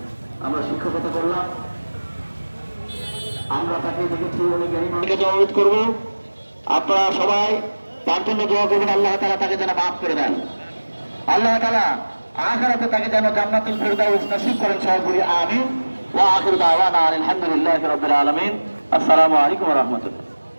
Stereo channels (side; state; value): both; inverted; correlation -1.00